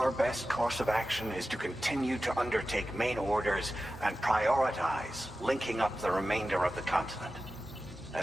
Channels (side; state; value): both; normal; correlation 0.94